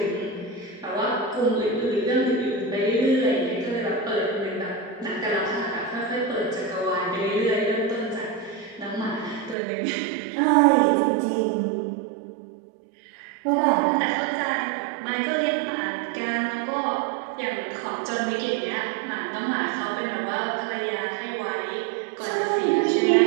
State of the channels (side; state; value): left; drops out; at 9.6 s